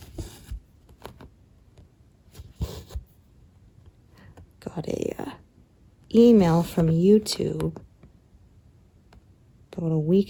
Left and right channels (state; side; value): identical; both; correlation 1.00